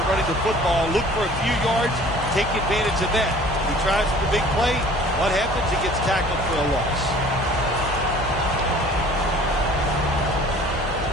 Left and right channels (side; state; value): both; normal; correlation 0.49